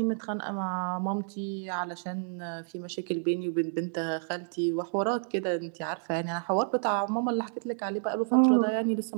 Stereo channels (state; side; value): silent; left; digital silence